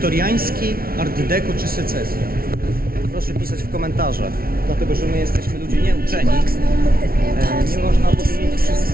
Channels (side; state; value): left; late; 0.43 ms